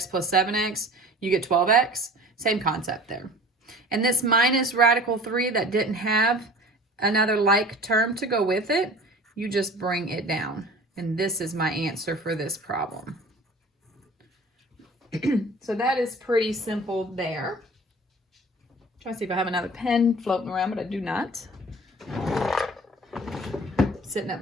plus 7x, you get 12x. Same concept there. And this minus radical 3 that didn't have another like term to go with it, you just bring it down. And this is my answer for this problem. So that is pretty simple there. Try to see if I have another pen floating around, but I do not. Sitting at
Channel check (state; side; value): normal; both; correlation 0.43